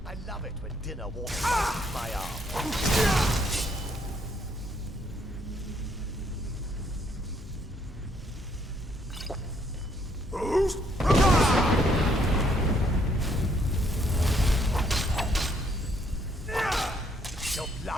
love it when dinner walks past my arm. Your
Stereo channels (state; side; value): normal; both; correlation 0.69